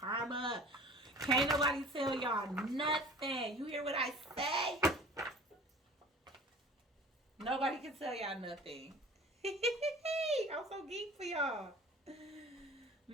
Can't nobody tell y'all nothing. You hear what I say? Nobody can tell y'all nothing. I'm so geek for y'all.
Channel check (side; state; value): both; normal; correlation 0.44